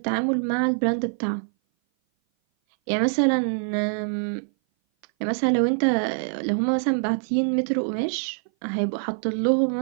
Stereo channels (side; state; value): left; silent; 58 dB below the other